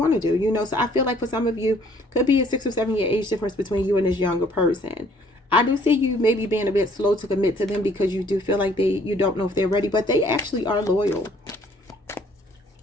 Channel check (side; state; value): both; normal; correlation 0.60